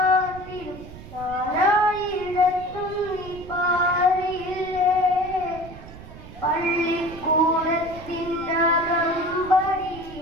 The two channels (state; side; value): noise; right; rumble, 15 dB below the sound